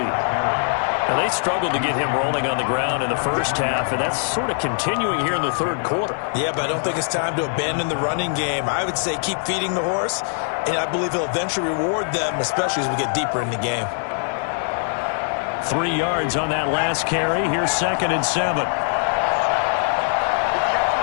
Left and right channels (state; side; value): silent; right; digital silence